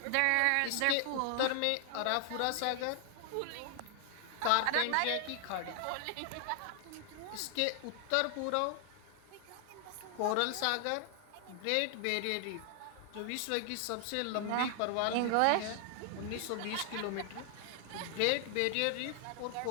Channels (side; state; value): both; different; correlation 0.00